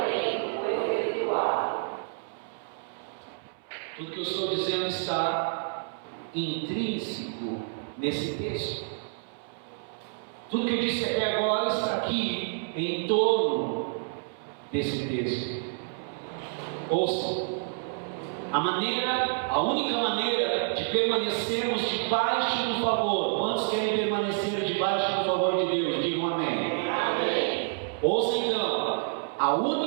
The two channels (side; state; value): left; silent; 59 dB below the other